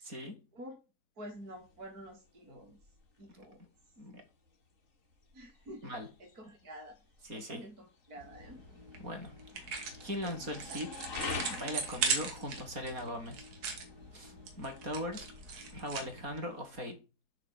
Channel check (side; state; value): left; late; 4.5 ms